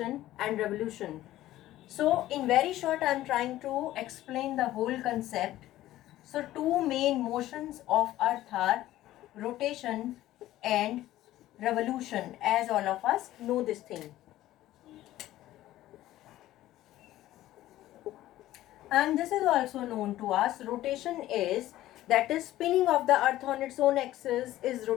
and revolution. So in very short, I am trying to explain the whole concept. So two main motions of Earth are rotation and revolution, as all of us know this thing. And this is also known to us. Rotation is, that is spinning of the Earth on its own axis is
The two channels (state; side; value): quieter; right; 14.8 dB